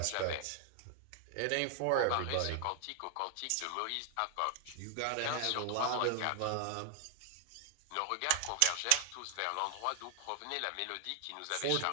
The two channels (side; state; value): both; different; correlation 0.00